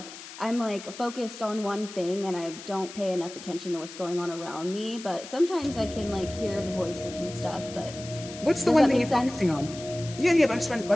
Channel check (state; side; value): noise; left; hiss, 14 dB below the sound